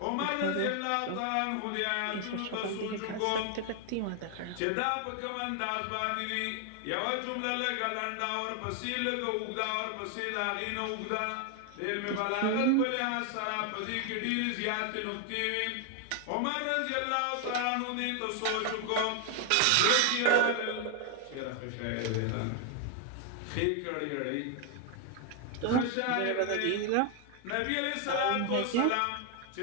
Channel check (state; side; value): different; both; correlation 0.01